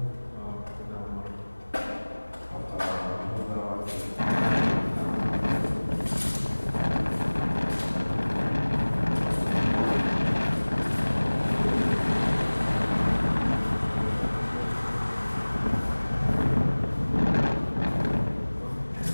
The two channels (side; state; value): both; inverted; correlation -1.00